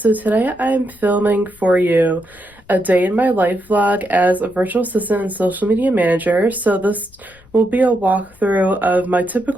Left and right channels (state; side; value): noise; left; rumble, 27 dB below the sound